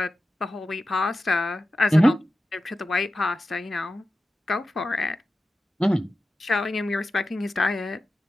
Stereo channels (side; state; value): both; normal; correlation 0.93